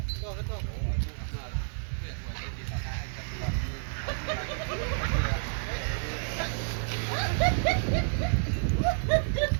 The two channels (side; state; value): left; silent; 58 dB below the other